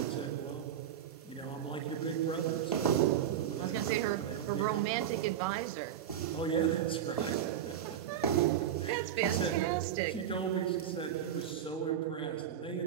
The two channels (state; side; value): quieter; left; 9.8 dB